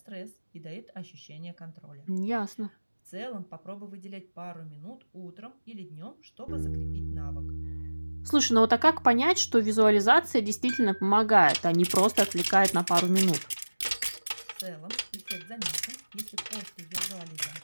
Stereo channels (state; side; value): inverted; both; correlation -1.00